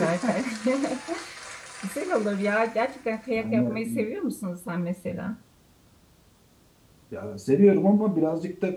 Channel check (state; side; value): identical; both; correlation 1.00